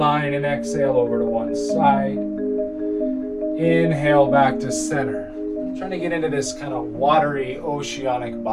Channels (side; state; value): both; identical; correlation 1.00